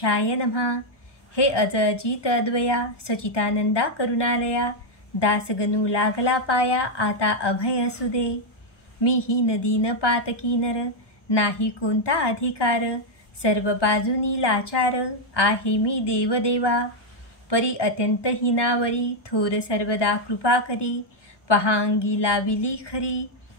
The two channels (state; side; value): late; right; 1.1 ms